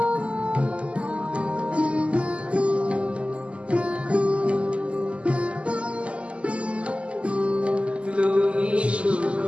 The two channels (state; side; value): late; left; 0.057 ms